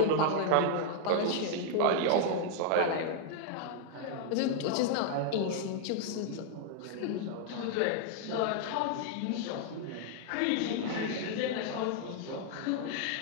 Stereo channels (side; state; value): both; different; correlation 0.00